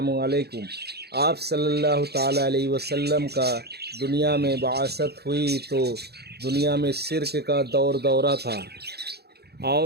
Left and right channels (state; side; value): late; left; 0.47 ms